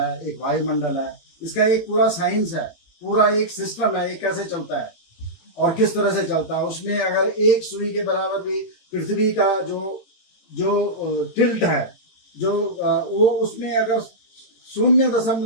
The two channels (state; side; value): late; right; 18 ms